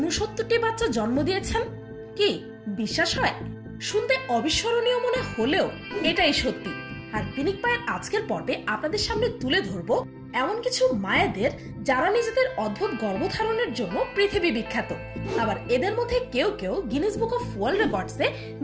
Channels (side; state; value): both; identical; correlation 1.00